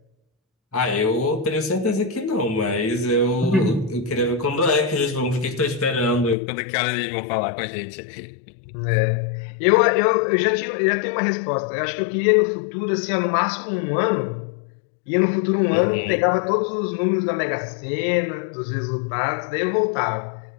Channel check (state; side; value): drops out; right; at 6.4 s